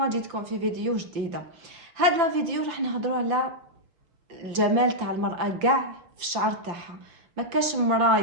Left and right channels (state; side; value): late; left; 5.8 ms